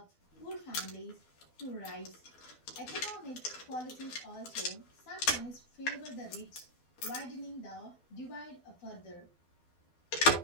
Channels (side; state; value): right; late; 12 ms